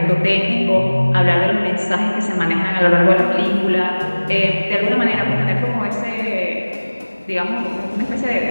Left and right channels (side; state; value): both; inverted; correlation -1.00